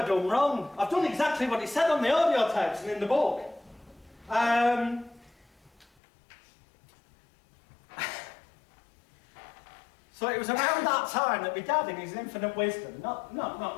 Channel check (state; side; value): drops out; right; at 5.9 s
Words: done wrong? I've done exactly what it said on the audio tapes and in the book. So it was around that time that my dad, in his infinite wisdom, not that